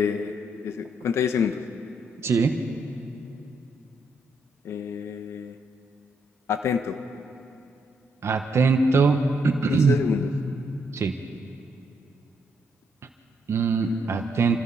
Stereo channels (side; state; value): both; normal; correlation 0.75